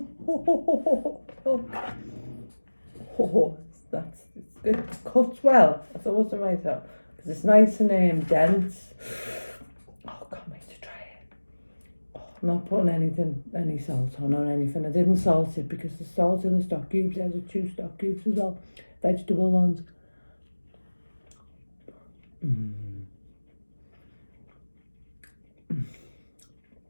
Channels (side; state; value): both; inverted; correlation -1.00